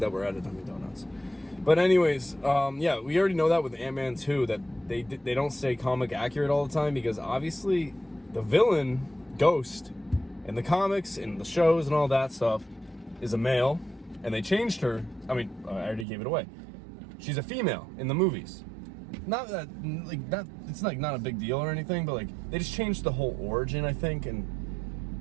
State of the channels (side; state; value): left; drops out; at 16.1 s